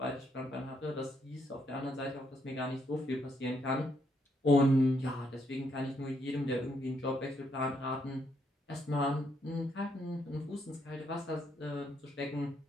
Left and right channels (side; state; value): both; normal; correlation 0.75